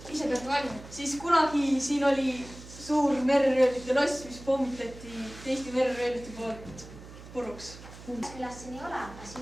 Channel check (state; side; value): noise; right; hum, 16 dB below the sound